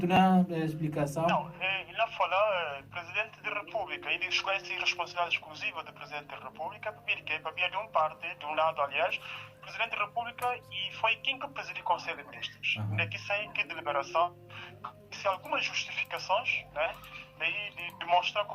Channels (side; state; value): both; identical; correlation 1.00